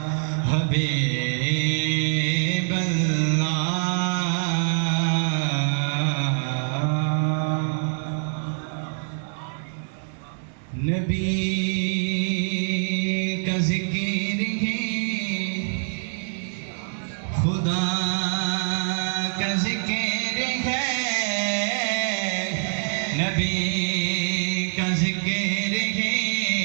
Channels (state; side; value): silent; left; digital silence